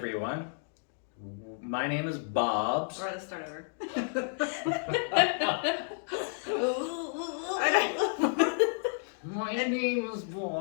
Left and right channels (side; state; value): right; silent; digital silence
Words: My name is Bobs. Or let's start over. My name is